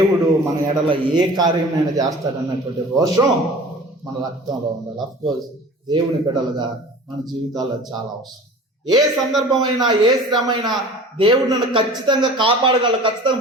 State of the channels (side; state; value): both; normal; correlation 0.42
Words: మన ఎడల ఏ కార్యమైనా చేస్తాడన్నటువంటి రోషం మన రక్తంలో ఉండాలి. అఫ్కోర్స్ దేవుని బిడ్డలుగా మన జీవితాల్లో చాలా అవసరం. ఏ సందర్భమైనా, ఏ శ్రమైనా దేవుడు నన్ను ఖచ్చితంగా కాపాడగలడు, ఖచ్చితంగా